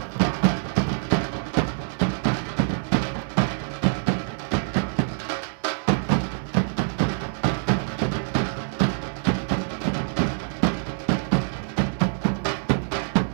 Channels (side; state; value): left; silent; digital silence